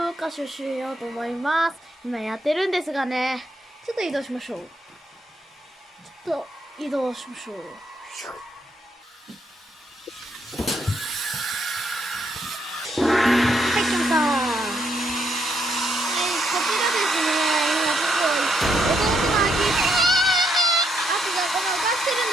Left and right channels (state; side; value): normal; both; correlation 0.76